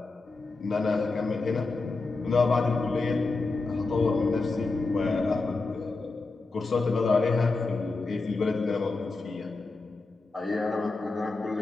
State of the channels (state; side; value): quieter; right; 3.6 dB